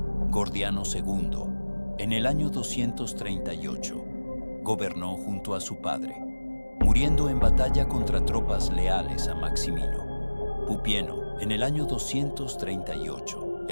Gordiano II, en el año 238, gobernó junto a su padre, muriendo en batalla contra tropas leales a Maximino. Pupieno, en el año 238,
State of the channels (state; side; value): inverted; both; correlation -1.00